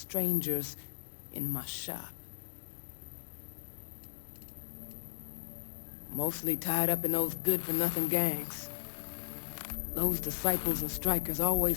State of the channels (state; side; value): silent; right; digital silence